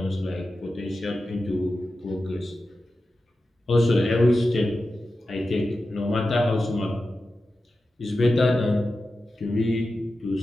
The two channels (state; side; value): normal; both; correlation 0.92